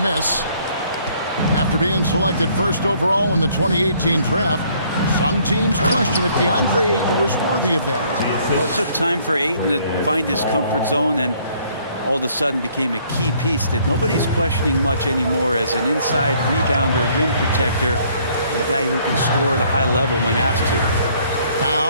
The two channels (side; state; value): both; inverted; correlation -0.63